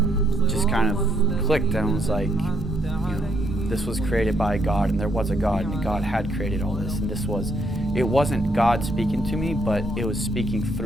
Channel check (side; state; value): both; normal; correlation 0.73